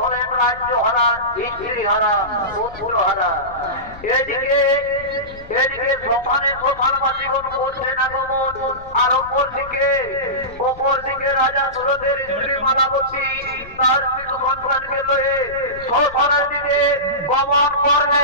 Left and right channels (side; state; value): left; noise; rumble, 19 dB below the sound